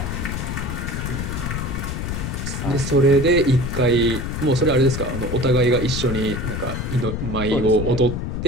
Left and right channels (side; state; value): left; noise; rumble, 3 dB below the sound